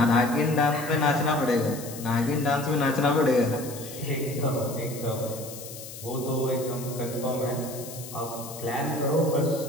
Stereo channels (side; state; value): left; noise; hiss, 13 dB below the sound